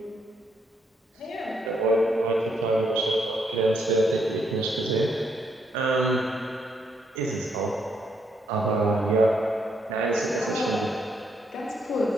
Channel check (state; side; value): normal; both; correlation 0.74